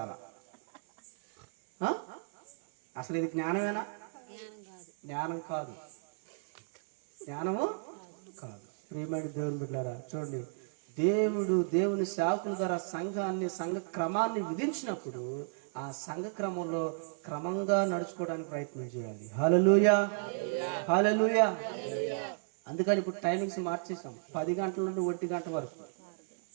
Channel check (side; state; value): left; silent; 56 dB below the other